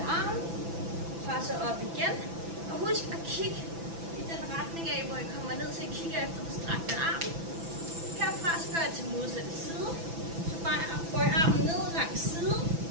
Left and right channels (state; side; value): late; left; 6.0 ms